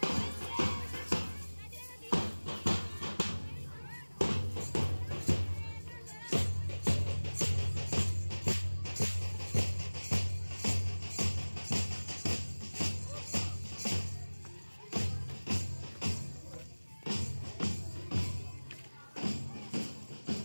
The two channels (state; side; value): inverted; both; correlation -1.00